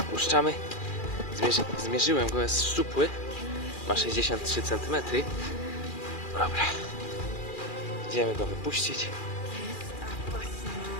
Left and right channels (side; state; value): right; late; 2.4 ms